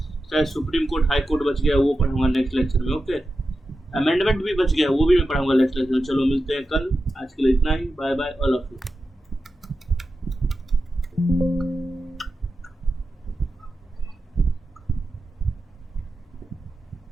चाहे सुप्रीम कोर्ट हाई कोर्ट बच गया वो पढ़ाऊंगा नेक्स्ट लेक्चर में, ओके। अमेंडमेंट भी बच गया वो भी मैं पढ़ाऊंगा नेक्स्ट लेक्चर में। चलो मिलते हैं कल, आज के लिए इतना ही, bye bye all of you.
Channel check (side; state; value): both; normal; correlation 0.91